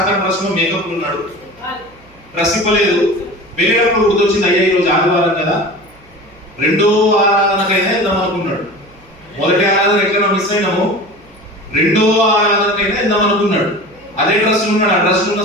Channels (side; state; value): right; noise; hum, 28 dB below the sound